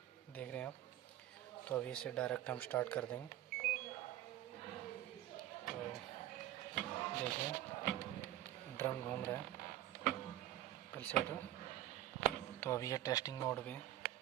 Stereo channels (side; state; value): left; quieter; 13.8 dB